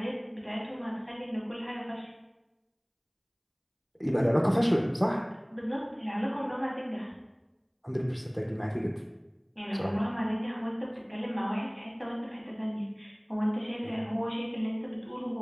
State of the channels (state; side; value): identical; both; correlation 1.00